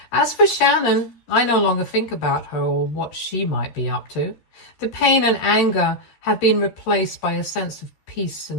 As for Shannon, I no longer think about her or what she might be up to. The pain and anger have been replaced by a sense of peace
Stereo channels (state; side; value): late; right; 13 ms